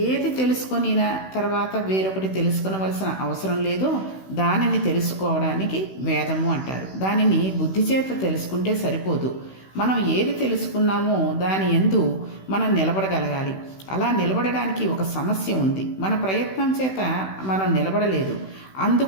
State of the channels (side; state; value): right; late; 16 ms